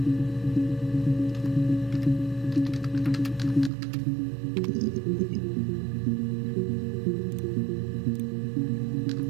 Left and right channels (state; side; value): drops out; left; at 3.7 s